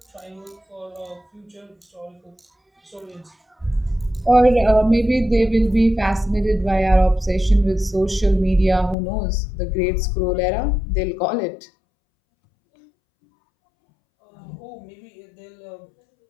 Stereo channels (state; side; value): drops out; right; at 9.0 s